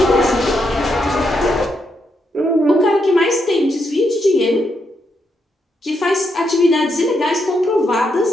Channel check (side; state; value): both; normal; correlation 0.80